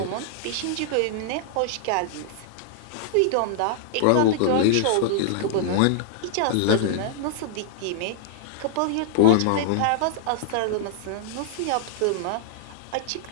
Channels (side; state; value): both; different; correlation -0.01